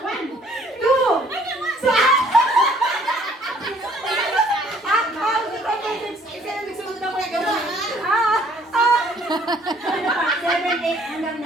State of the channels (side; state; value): both; normal; correlation 0.59